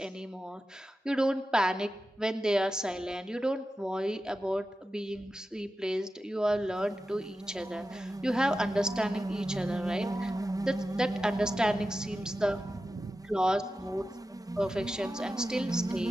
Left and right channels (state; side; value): normal; both; correlation 0.92